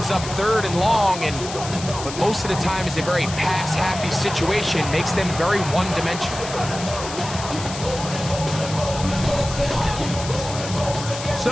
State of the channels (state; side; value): noise; left; hiss, 10 dB below the sound